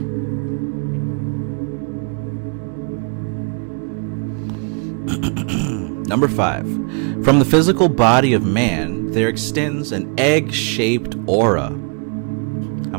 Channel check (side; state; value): left; quieter; 38.0 dB